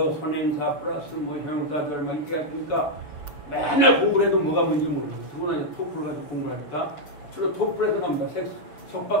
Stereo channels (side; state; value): right; late; 6.9 ms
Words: 선행사 플러스 뭐 형사들 막 이렇게 가르치니까 맨날 공부를 해도 뭐가 뭔지 모르겠어요. 그거는 토플 가지고 공부를 하니까 주로 토플에서 나옵니다.